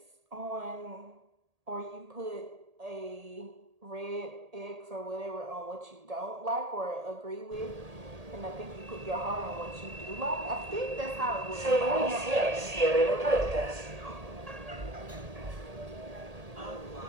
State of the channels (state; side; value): late; left; 1.8 ms